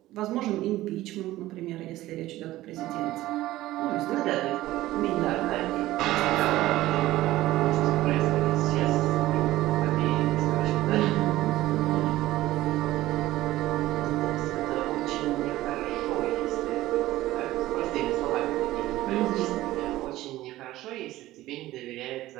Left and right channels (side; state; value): left; quieter; 16.1 dB